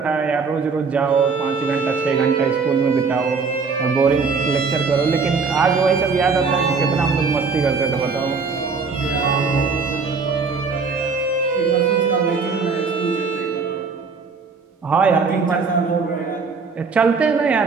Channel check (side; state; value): left; quieter; 4.9 dB